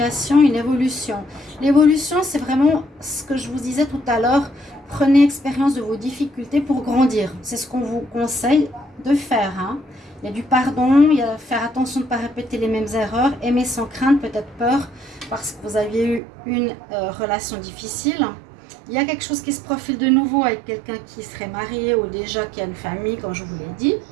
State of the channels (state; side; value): drops out; left; at 16.2 s